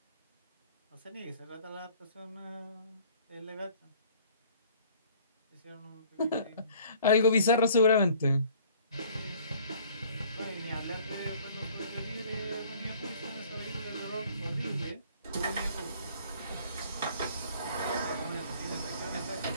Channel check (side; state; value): both; inverted; correlation -0.54